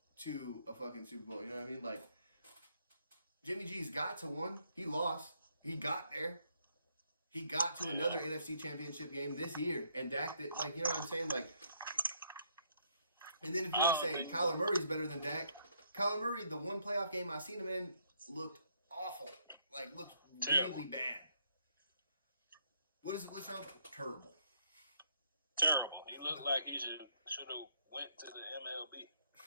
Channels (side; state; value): both; inverted; correlation -0.69